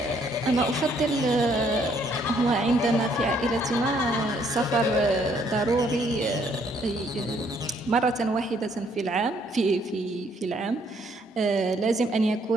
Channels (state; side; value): normal; both; correlation 0.67